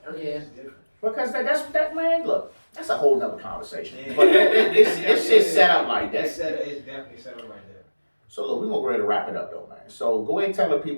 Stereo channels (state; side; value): inverted; both; correlation -1.00